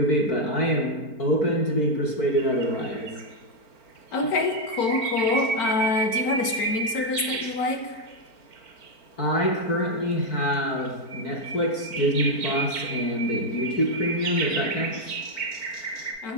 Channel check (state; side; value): late; right; 4.4 ms